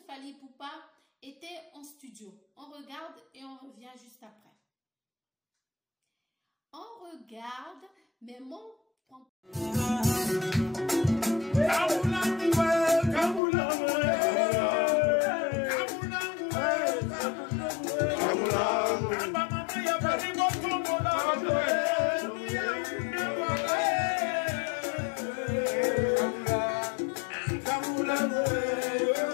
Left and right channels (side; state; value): right; drops out; at 13.4 s